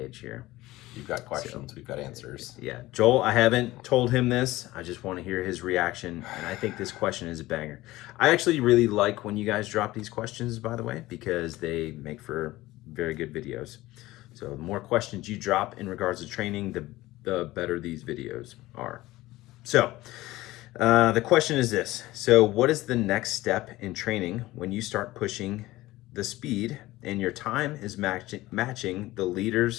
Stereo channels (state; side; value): quieter; right; 17.9 dB